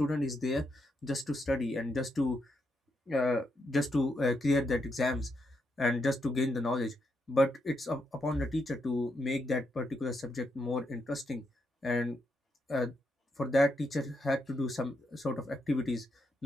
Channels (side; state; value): both; normal; correlation 0.81